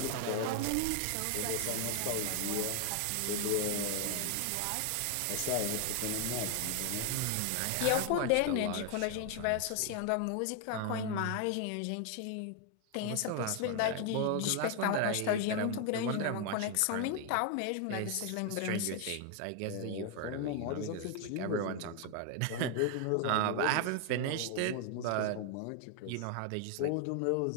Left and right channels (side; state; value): both; different; correlation 0.00